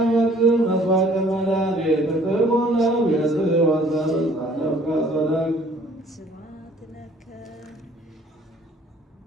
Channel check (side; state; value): both; normal; correlation 0.57